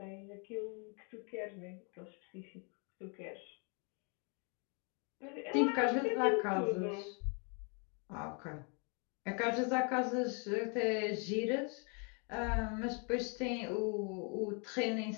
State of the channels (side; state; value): right; quieter; 36.3 dB